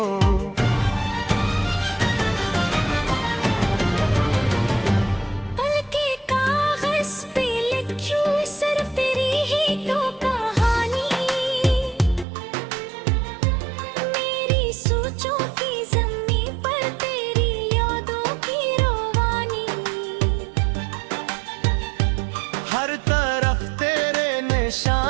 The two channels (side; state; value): left; drops out; at 12.2 s